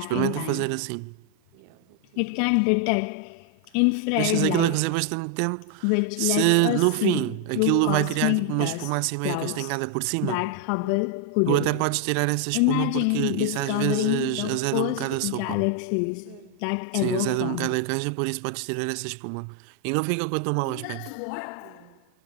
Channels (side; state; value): both; different; correlation 0.00